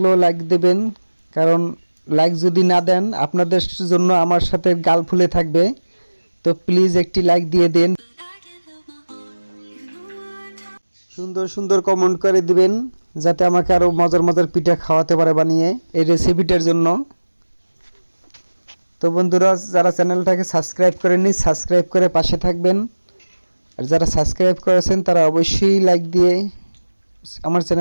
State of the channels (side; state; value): both; inverted; correlation -1.00